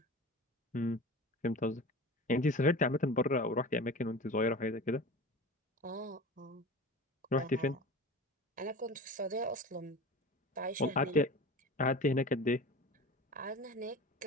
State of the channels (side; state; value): both; normal; correlation 0.35